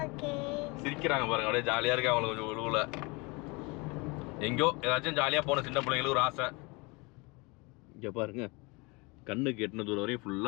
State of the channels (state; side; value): quieter; right; 27.3 dB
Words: சிரிக்கிறாங்க பாருங்க, அப்படியே ஜாலியாக இருக்கு அவங்களுக்கு. கொஞ்சம் உழுவுல எங்கேயோ ஏதாச்சும் ஜாலியாக போன சின்ன பிள்ளைங்களுக்கு ஒரு ஆசை. இங்கே பாருங்க, கண்ணுக்கு எட்டின தூரம் வரையும்